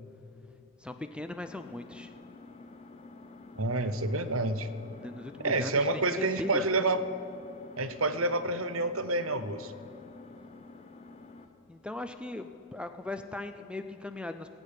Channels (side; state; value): both; normal; correlation -0.15